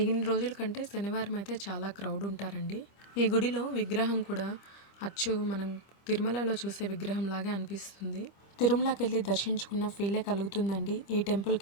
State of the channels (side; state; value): right; late; 25 ms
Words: రోజుల కంటే శనివారం అయితే చాలా క్రౌడ్ ఉంటారండి. ఈ గుడిలో విగ్రహం కూడా అచ్చు మనం తిరుమలలో చూసే విగ్రహం లాగే అనిపిస్తుంది. తిరుమలకి వెళ్ళి దర్శించుకున్న ఫీలే కలుగుతుందండి ఈ